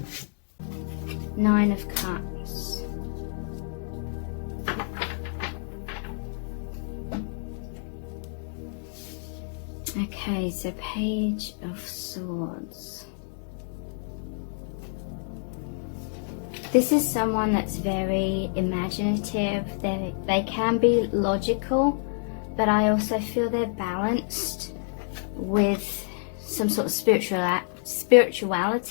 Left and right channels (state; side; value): silent; right; digital silence